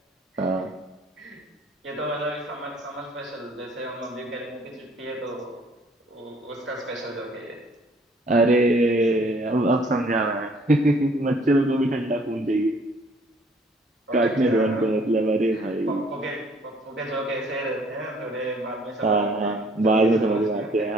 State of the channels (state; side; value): normal; both; correlation 0.59